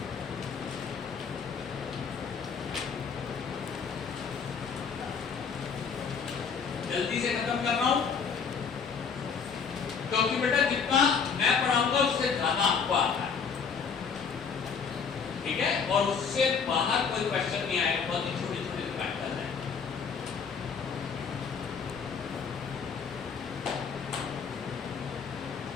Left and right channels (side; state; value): right; quieter; 6.1 dB